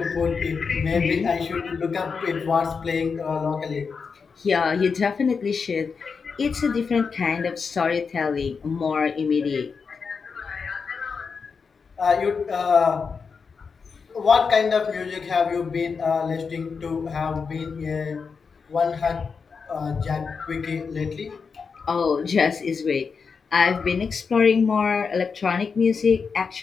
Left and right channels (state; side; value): quieter; right; 5.4 dB